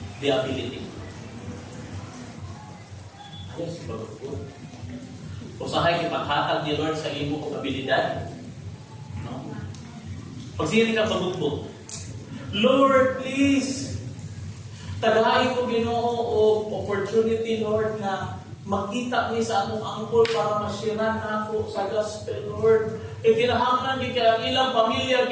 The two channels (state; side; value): identical; both; correlation 1.00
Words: the ability. Ayos, bago po. Usahay ipaghatag ni Lord sa imo kong abilidad. No? Pag sinin ka pagbukbog, Lord, please, tagahin ko Ginoo o opportunity, Lord, na makita niya sa akong angkol para masyiran na ako sa gospel, Lord. Kinahanglan ni kaya ilang pamilya,